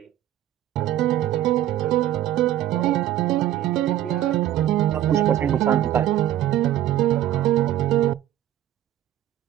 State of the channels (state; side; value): quieter; left; 12.4 dB